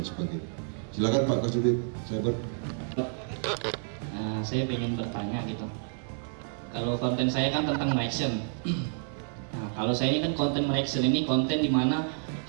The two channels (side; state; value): left; silent; 58 dB below the other